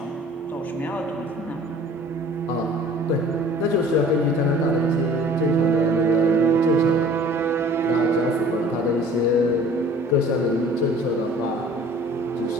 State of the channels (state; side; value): normal; both; correlation 0.49